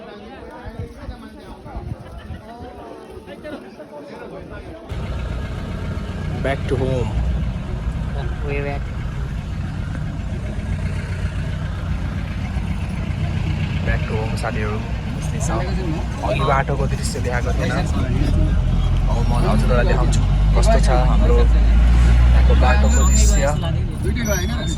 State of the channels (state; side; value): identical; both; correlation 1.00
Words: Back to home. Way back. Back to home साथीहरू अघि बाटोको दृश्य देखाएको थिएन अब म हजुरहरूलाई देखाउँछु कस्तो छ हाम्रो यहाँको बाटोको दृश्य